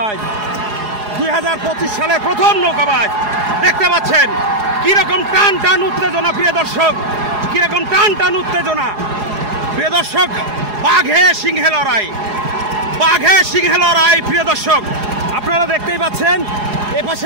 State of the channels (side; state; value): left; late; 4.8 ms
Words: 2025 সালের প্রথম নৌকাবাজ দেখতে পাচ্ছেন কিরকম টান টান উত্তেজনা। প্রিয় দর্শক, কিরকম টান টান উত্তেজনা। প্রিয় দর্শক, বাঘে সিংহে লড়াই, বাঘে সিংহে লড়াই। প্রিয় দর্শক, আপনারা দেখতেই পাচ্ছেন